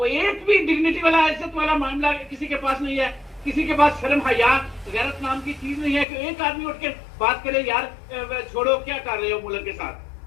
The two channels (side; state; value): right; drops out; at 6.1 s